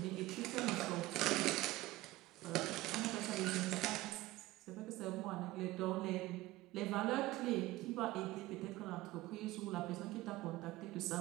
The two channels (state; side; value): quieter; left; 18.1 dB